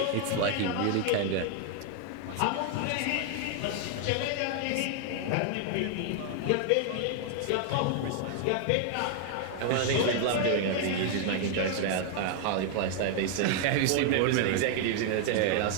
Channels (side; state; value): both; different; correlation 0.00